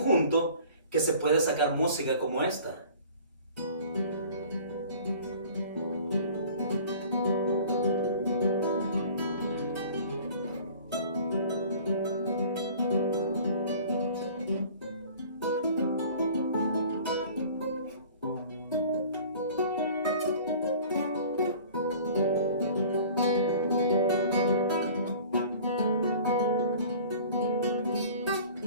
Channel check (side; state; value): both; inverted; correlation -0.46